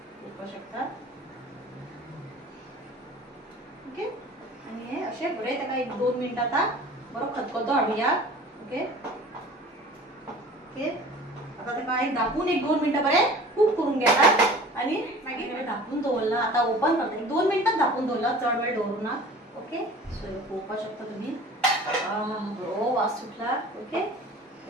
पळोवपाक शकता. ओके आनी हें अशें बरें ताका 1-2 मिनटां आतां बरो खतखतो हाडुया. ओके ओके आतां ताका हांवें धापून 1-2 मिनटां बरें कूक करून घेता. आनी मागीर धापून दवरला. आतां ओपन करता. 1-2 मिनटां धापून दवरला चड वेळ दवरुना. ओके सो पळोवपाक शकता तुमी बरो वास सुटला. ओके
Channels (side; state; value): both; normal; correlation 0.44